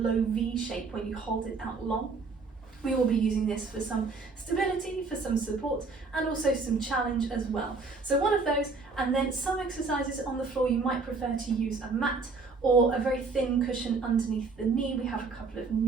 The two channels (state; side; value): quieter; left; 4.2 dB